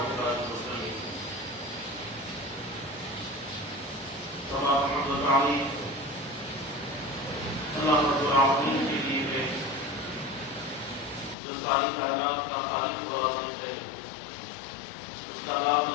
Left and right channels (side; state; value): right; drops out; at 11.4 s